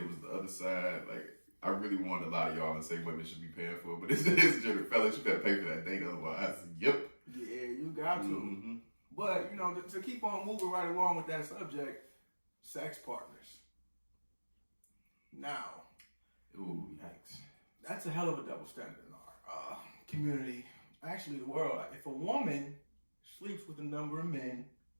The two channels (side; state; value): both; inverted; correlation -1.00